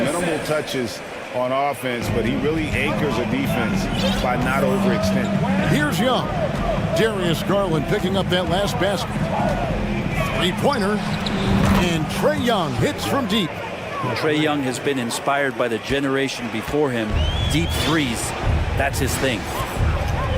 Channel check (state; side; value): identical; both; correlation 1.00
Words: touches on offense, but he really anchors a defense by not overextending. Here's Young. Darius Garland picking up that last basket. 3-pointer. And Trae Young hits from deep. Trae Young has been inspired by the generation before him. Deep threes, that's his thing.